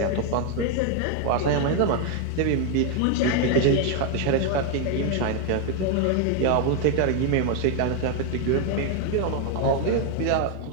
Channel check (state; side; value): different; both; correlation 0.00